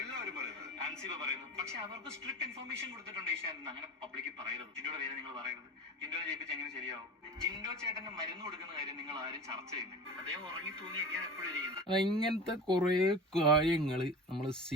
പക്ഷെ അവർക്ക് സ്ട്രിക്ട് ഇൻഫർമേഷൻ കൊടുത്തിട്ടുണ്ട് ഏഷ്യാനെന്ന്. അങ്ങനെ പബ്ലിക്കിൽ പറയരുത്. ജിൻഡോയുടെ പേര് നിങ്ങൾ പറയരുത്. ജിൻഡോനെ ജയിപ്പിച്ച് എങ്ങനെ ശരിയാവും? ജിൻഡോ ചേട്ടന് മരുന്ന് കൊടുക്കുന്ന കാര്യം നിങ്ങൾ ആരും ചർച്ച ചെയ്യുന്നില്ല. അദ്ദേഹം ഉറങ്ങി തൂങ്ങിയൊക്കെയാണ് എപ്പോഴും ഇരിക്കുന്നത്. ഇങ്ങനത്തെ കുറെ കാര്യങ്ങൾ നമ്മൾ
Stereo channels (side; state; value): both; normal; correlation 0.33